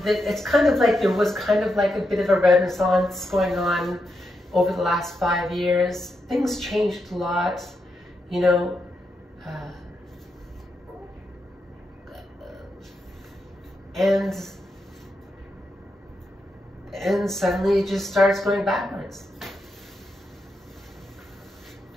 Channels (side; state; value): both; normal; correlation 0.84